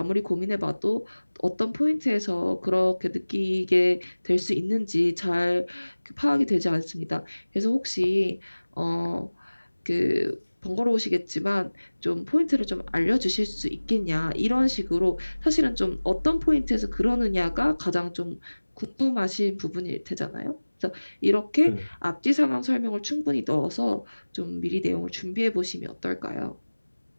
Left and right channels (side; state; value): both; inverted; correlation -1.00